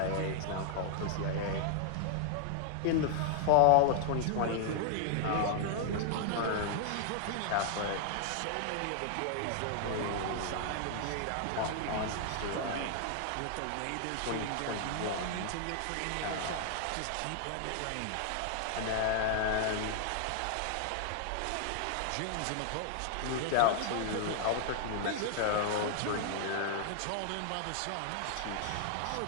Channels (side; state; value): both; different; correlation 0.00